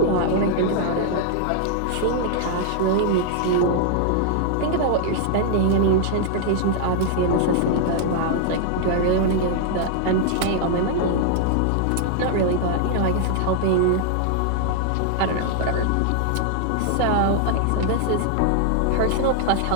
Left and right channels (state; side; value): different; both; correlation -0.01